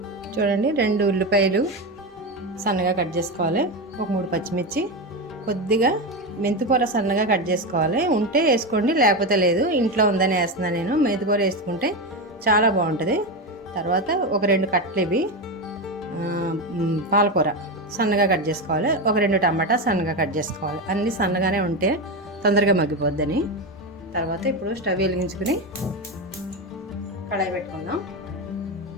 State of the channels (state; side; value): normal; both; correlation 0.15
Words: చూడండి, 2 ఉల్లిపాయలు సన్నగా కట్ చేసుకోవాలి. ఒక 3 పచ్చిమిర్చి, కొద్దిగా మెంతికూర సన్నగా కట్ చేసుకోవాలి. ఉంటే వేసుకోండి, లేకపోతే లేదు. ఇంట్లో ఉందని వేస్తున్నాను నేను. మెంతికూర వేసుకుంటే చాలా బాగుంటుంది. తర్వాత ఒక 2 కట్టలు ఇవి పాలకూర సన్నగా కట్ చేసుకోవాలి. ఒక 2 టమాటా సన్నగా కట్ చేసుకోవాలి. అన్నీ సన్నగానే ఉంటే తొందరగా మగ్గిపోద్దని. తర్వాత ఇప్పుడు స్టవ్ వెలిగించుకుని కడాయి పెట్టుకుందాం.